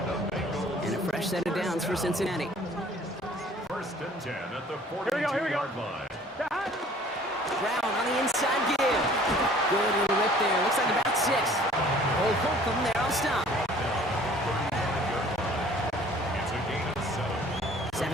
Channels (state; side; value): normal; both; correlation 0.53